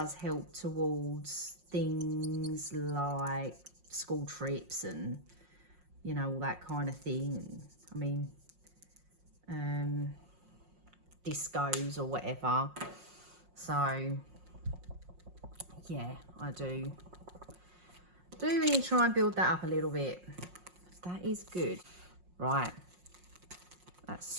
help towards things like school trips and, you know, all that kind of thing. I mean, discos or whatever. So yeah, I do really try and build that up a little bit. That is good. Right, that's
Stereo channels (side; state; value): left; late; 5.6 ms